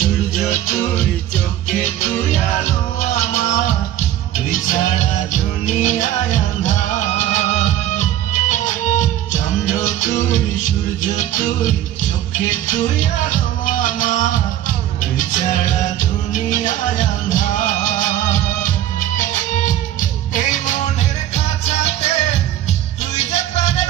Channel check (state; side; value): quieter; left; 12.5 dB